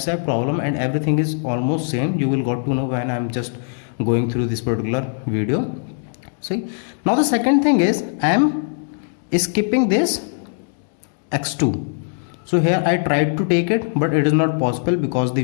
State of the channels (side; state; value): right; silent; digital silence